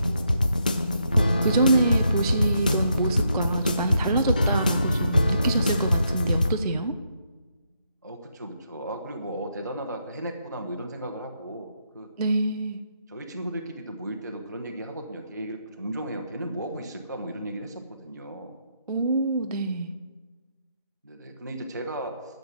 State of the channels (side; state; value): both; inverted; correlation -0.78